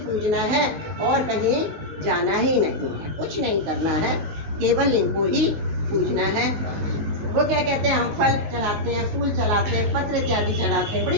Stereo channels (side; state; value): left; late; 19 ms